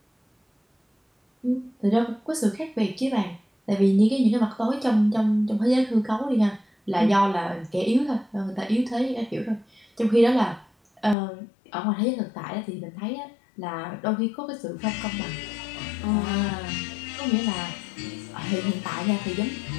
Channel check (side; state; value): right; drops out; at 11.2 s